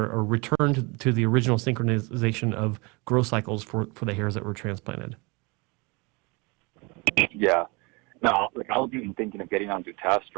a return to the original synchronization of growth cycles for the hairs that were transplanted. Yeah. No, like I was even thinking of getting onto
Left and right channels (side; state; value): left; quieter; 27.8 dB